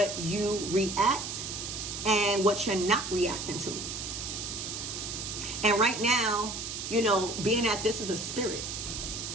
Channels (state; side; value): noise; right; hiss, 6 dB below the sound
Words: you react and what you're not reacting to. And right now, being that this is a spirit